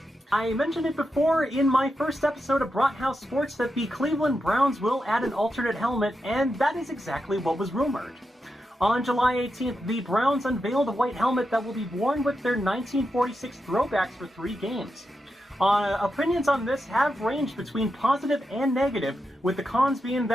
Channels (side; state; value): both; normal; correlation 0.87